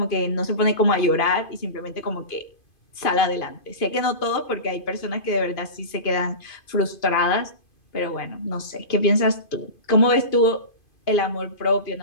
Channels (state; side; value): late; right; 2.5 ms